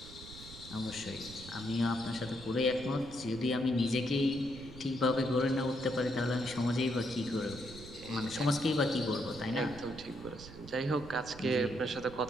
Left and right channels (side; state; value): right; noise; rumble, 15 dB below the sound